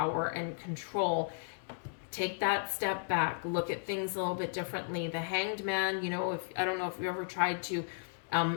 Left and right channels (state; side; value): silent; right; digital silence